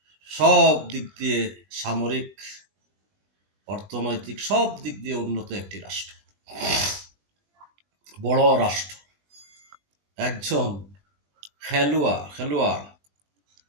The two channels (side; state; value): left; late; 20 ms